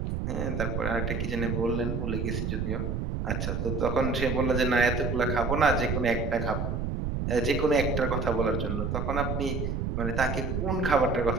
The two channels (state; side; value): noise; right; rumble, 1 dB below the sound